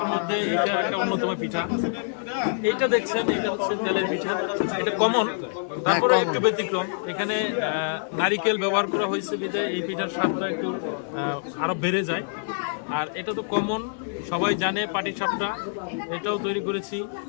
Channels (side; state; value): right; silent; 61 dB below the other